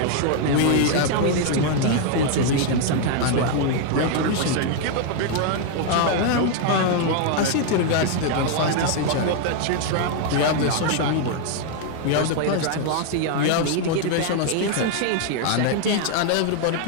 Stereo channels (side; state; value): both; different; correlation 0.00